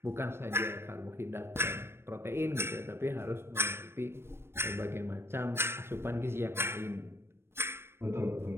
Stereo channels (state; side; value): late; left; 0.12 ms